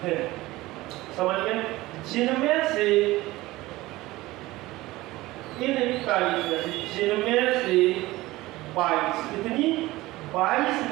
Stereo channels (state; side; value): quieter; left; 18.7 dB